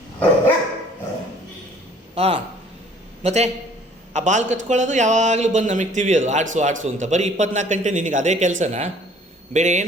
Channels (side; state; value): both; normal; correlation 0.55